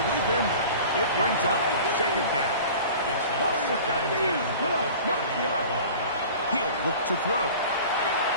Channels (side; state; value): both; inverted; correlation -0.41